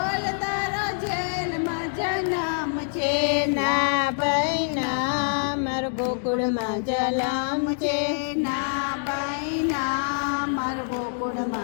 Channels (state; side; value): silent; right; digital silence